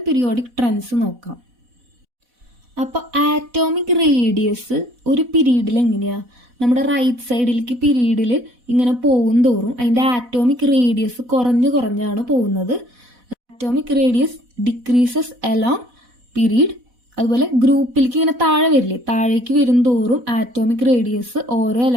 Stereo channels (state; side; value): late; left; 4.1 ms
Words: periodic trends നോക്കാം. അപ്പോൾ ആറ്റോമിക് റേഡിയസ് ഒരു പീരീഡിൽ എങ്ങനെയാണ്, നമ്മുടെ റൈറ്റ് സൈഡിലേക്ക് പീരീഡിൽ ഇങ്ങനെ പോകും തോറും അതിൻ്റെ ആറ്റോമിക് റേഡിയസ് കുറഞ്ഞാണ് പോകുന്നത്. Atomic radius decreases along period. അതുപോലെ ഗ്രൂപ്പിലേക്ക് ഇങ്ങനെ താഴെ വരില്ലേ, താഴേക്ക് വരും തോറും ആറ്റോമിക് റേഡിയസ് ഓരോ